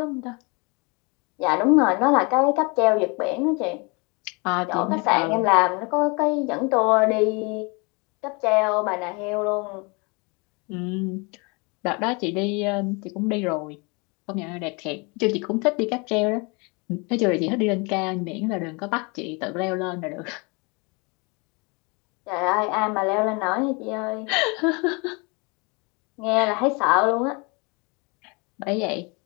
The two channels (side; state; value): right; quieter; 30.1 dB